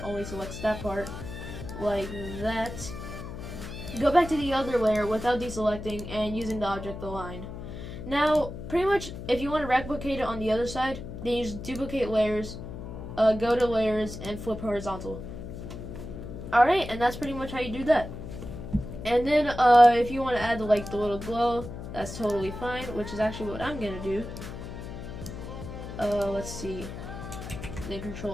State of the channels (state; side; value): noise; left; hum, 9 dB below the sound